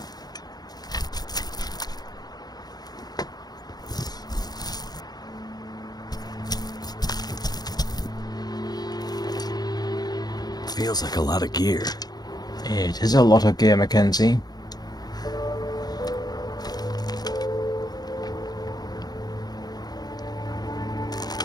Feels like a lot of gear. It is a lot of gear, Mackenzie.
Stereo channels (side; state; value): right; late; 0.19 ms